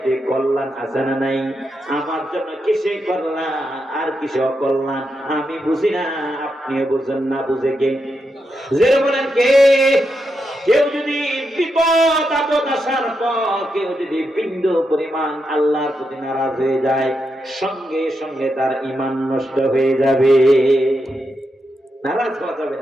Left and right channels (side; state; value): both; normal; correlation 0.85